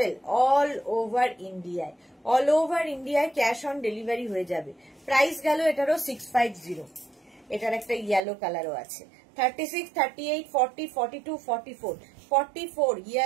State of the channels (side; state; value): left; drops out; at 8.2 s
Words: all over ইন্ডিয়ায়, অল ওভার ইন্ডিয়ায় ক্যাশ অন ডেলিভারি হয়ে যাবে। প্রাইস গেল এটারও 650। এটার একটা ইয়েলো কালারও আছে 36, 38, 40, 42, 44, 44